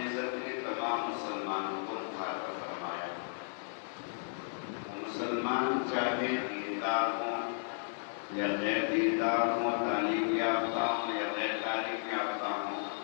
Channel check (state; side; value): silent; right; digital silence